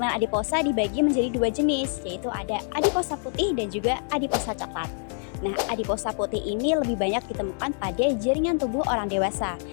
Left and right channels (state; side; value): silent; right; 58 dB below the other